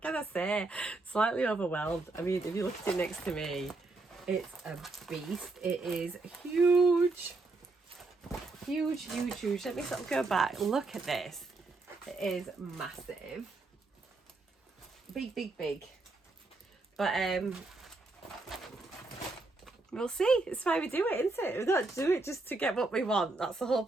can I say? Slightly overwhelmed. I mean, if you look at it next to me, It's a beast. It is huge. Huge, huge, huge. Let me sort of go back. Look at this. It is massive. Big, big, big. But we'll see. It's why we do it, isn't it? We don't do it just to get what we want. That's the whole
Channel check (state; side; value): quieter; left; 3.3 dB